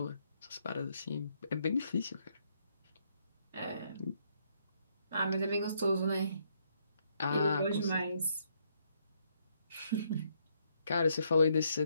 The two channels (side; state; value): both; inverted; correlation -0.73